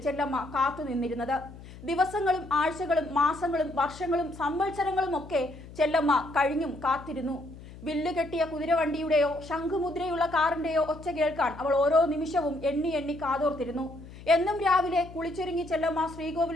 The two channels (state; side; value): noise; left; hum, 16 dB below the sound